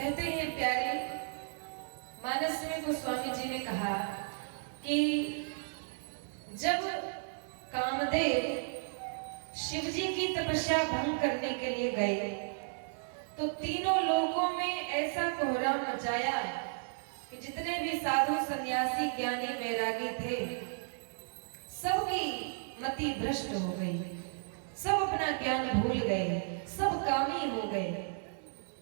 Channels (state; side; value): silent; left; digital silence